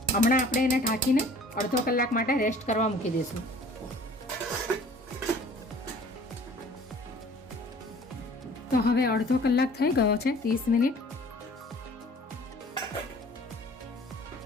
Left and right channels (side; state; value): both; normal; correlation 0.50